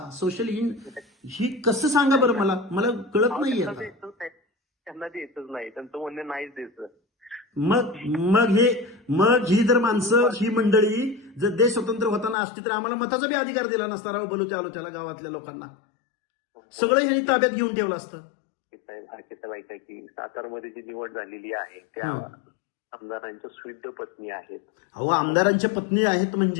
सोशल ही कसं सांगा बरं, मला कळत नाहीये. त्यांना द्यायचंच नाही, त्यांचं म्हणणं नाहीच द्यायचं. मग ही जर माणसं, ही मंडळी जर देश स्वतंत्र होताना असती तर आम्हाला मताचा बी अधिकार दिला नसता. राव बोलू त्याला गावातल्या लोकांना सगळं यांनी ताब्यात घेऊन ठेवलं असतं. साहेब ऐका की सातारमध्ये जी निवड झालेली आहे त्या आमदारांच्या स्विद्ध पत्नी आहेत. अहो आमदारांच्या पत्नी आहेत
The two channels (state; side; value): drops out; right; at 12.4 s